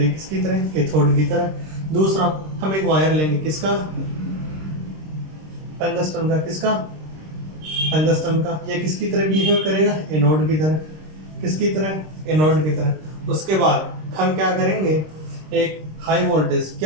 किसकी तरह? कैथोड की तरह। दूसरा, हम एक वायर लेंगे। किसका? टंगस्टन का। किसका? टंगस्टन का। ये किसकी तरह बिहेव करेगा? एनोड की तरह। किसकी तरह? एनोड की तरह। उसके बाद हम क्या करेंगे? एक हाई वोल्टेज,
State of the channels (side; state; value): left; late; 26 ms